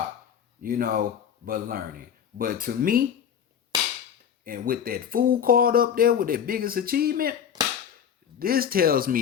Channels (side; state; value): right; quieter; 8.5 dB